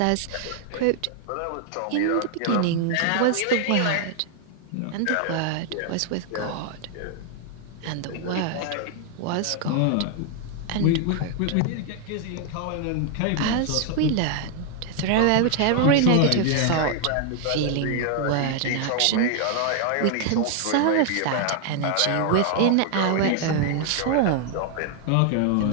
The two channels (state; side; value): different; both; correlation 0.00